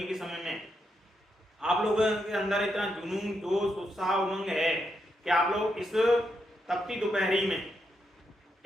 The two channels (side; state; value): both; normal; correlation 0.82